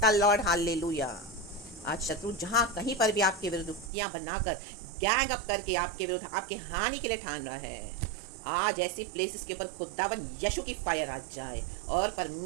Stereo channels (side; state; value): left; drops out; at 3.9 s